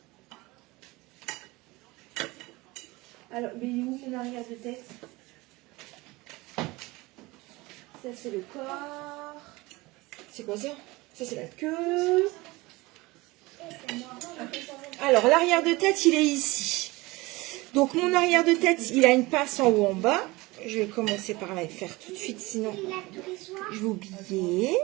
Alors, mais il est où mon arrière de tête? Ça, c'est le corps. C'est quoi ça? Ça, c'est la queue. Alors, l'arrière de tête, il est ici. Donc, mon arrière de tête, il a une pince en haut, en bas. Je vais commencer par la faire tout de suite, sinon je vais oublier.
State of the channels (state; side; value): quieter; left; 22.0 dB